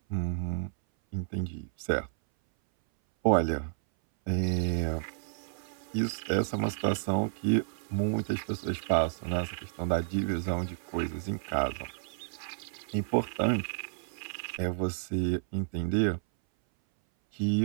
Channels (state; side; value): silent; left; 57 dB below the other